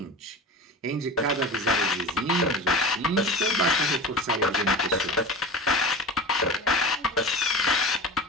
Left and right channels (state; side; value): normal; both; correlation 0.31